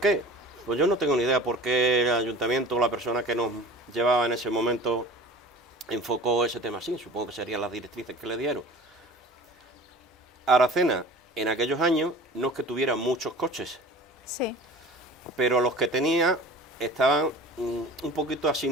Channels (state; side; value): normal; both; correlation 0.41